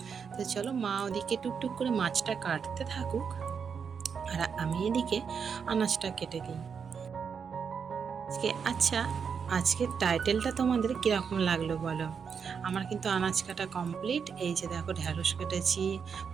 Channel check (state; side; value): quieter; left; 6.5 dB